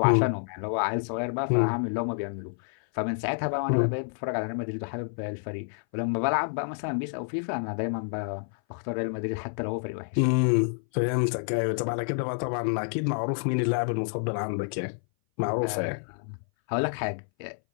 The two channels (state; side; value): silent; right; 58 dB below the other